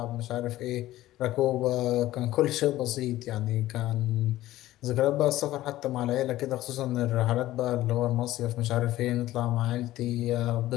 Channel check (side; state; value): right; quieter; 15.5 dB